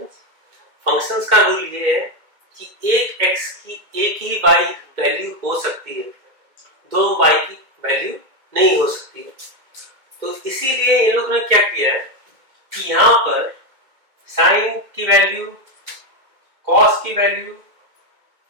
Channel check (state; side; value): late; left; 2.1 ms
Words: फंक्शंस का रूल ये है कि एक x की एक ही y वैल्यू हो सकती है, दो y की वैल्यू नहीं हो सकती है। तो इसीलिए इन लोगों ने क्या किया है कि यहाँ पर sin की वैल्यू, cos की वैल्यू,